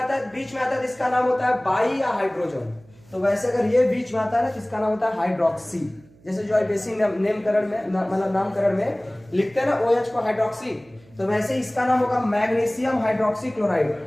है, बीच में आता है तो इसका नाम होता है बाई या हाइड्रोजन। तो वैसे अगर ये बीच में आता है ना तो इसका नाम होता है हाइड्रोक्सी। जैसे जो बेसिक नामकरण में मतलब नामकरण में लिखते हैं ना OH को हाइड्रोक्सी, तो वैसे इसका नाम होगा मैग्नीशियम हाइड्रोक्सी क्लोराइड।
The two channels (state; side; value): noise; right; hum, 27 dB below the sound